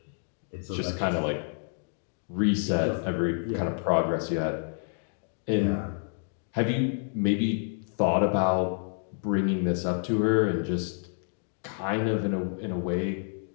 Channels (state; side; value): silent; right; 59 dB below the other